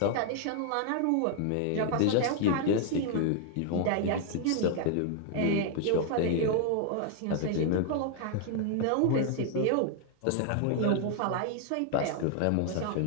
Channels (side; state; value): both; different; correlation 0.00